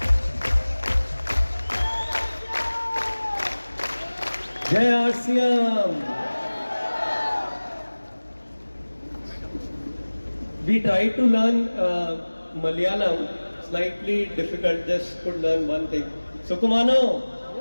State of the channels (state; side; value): inverted; both; correlation -1.00